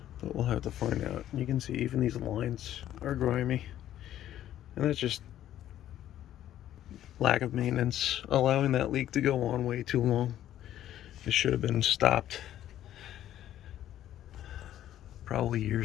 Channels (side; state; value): right; quieter; 12.1 dB